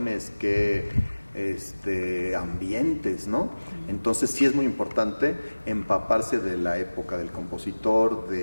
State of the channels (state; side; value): inverted; both; correlation -1.00